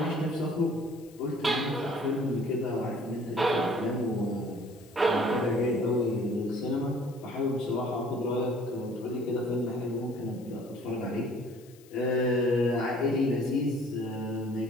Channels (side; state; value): left; noise; hiss, 26 dB below the sound